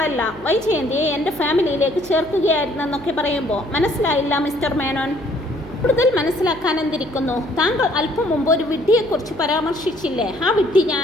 വൈജയന്തിയെ എൻ്റെ ഫാമിലിയിലേക്ക് ചേർക്കുകയായിരുന്നെന്നൊക്കെ പറയുമ്പോൾ, മനസ്സിലായില്ല മിസ്റ്റർ മേനോൻ. കൂടുതൽ മനസ്സിലാക്കാൻ എന്തിരിക്കുന്നു? താങ്കൾ അല്പം മുമ്പ് ഒരു വിഡ്ഢിയെക്കുറിച്ച് പരാമർശിച്ചില്ലേ? ആ വിഡ്ഢി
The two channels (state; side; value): noise; left; hum, 21 dB below the sound